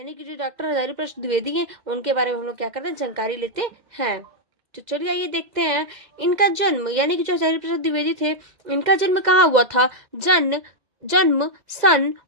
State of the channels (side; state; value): left; late; 2.0 ms